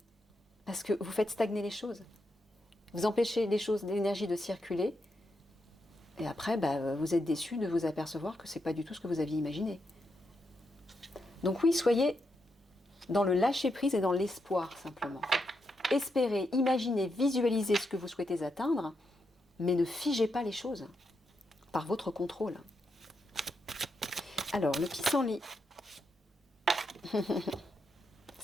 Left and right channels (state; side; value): normal; both; correlation 0.83